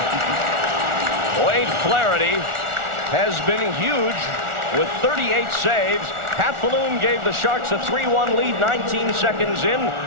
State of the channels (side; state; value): left; late; 1.4 ms